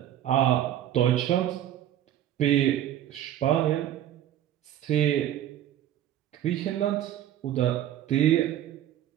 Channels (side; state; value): left; quieter; 11.7 dB